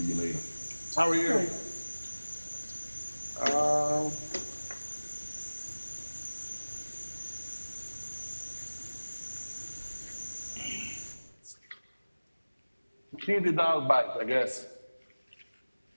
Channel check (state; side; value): inverted; both; correlation -1.00